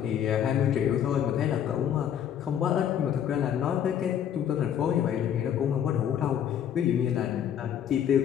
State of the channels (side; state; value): right; quieter; 9.4 dB